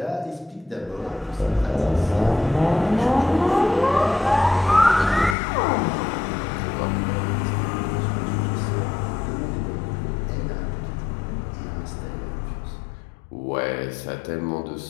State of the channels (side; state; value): right; drops out; at 5.4 s